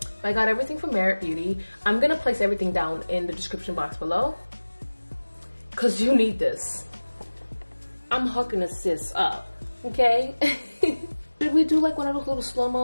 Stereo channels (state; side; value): inverted; both; correlation -1.00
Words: I got everything from Merit Beauty. I'm gonna place everything down in the description box below, cause you need this. I'm hooking a sis up, okay? Should we do like one of those little